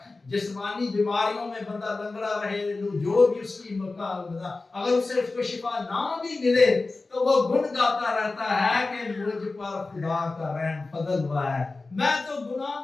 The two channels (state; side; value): quieter; right; 3.5 dB